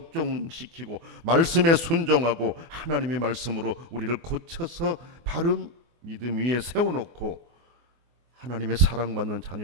말씀에 순종하고 하나님의 말씀으로 우리를 고쳐서 바른 믿음 위에 세워놓고 하나님의 사랑받는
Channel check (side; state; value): left; late; 24 ms